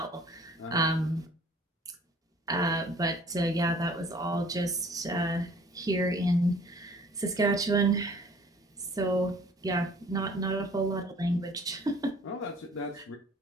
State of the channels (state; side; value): normal; both; correlation 0.52